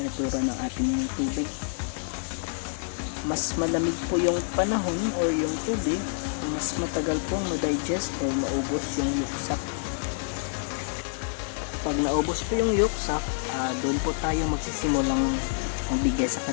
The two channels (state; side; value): silent; right; digital silence